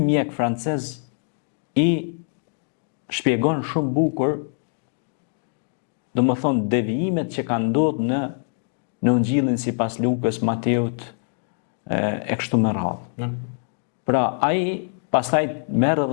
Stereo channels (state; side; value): silent; right; 63 dB below the other